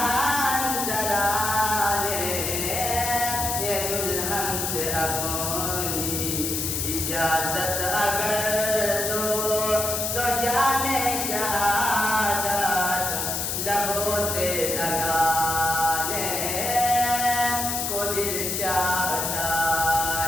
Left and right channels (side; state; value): left; noise; hiss, 1 dB below the sound